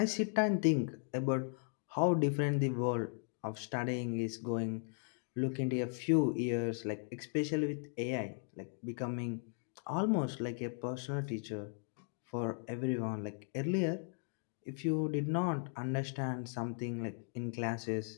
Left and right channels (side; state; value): right; silent; 53 dB below the other